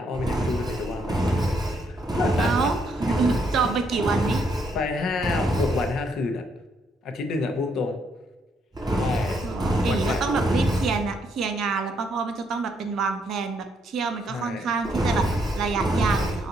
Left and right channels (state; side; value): normal; both; correlation 0.73